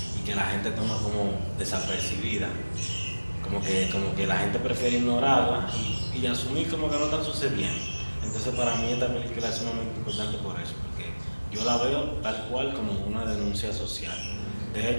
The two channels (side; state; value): both; inverted; correlation -1.00